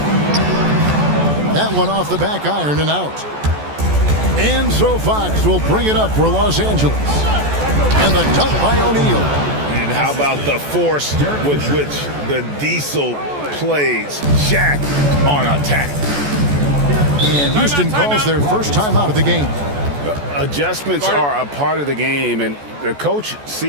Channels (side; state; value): left; late; 14 ms